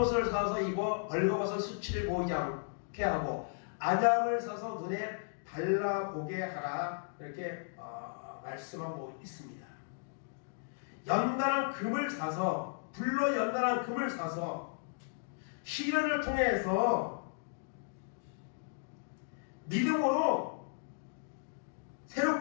사서 입어 벌거벗은 수치를 보이지 않게 하고 안약을 사서 눈에 발라보게 하라, 이렇게 말씀하고 있습니다. 연단한 금을 사서, 불로 연단한 금을 사서 시련을 통해서 믿음으로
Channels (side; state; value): right; silent; digital silence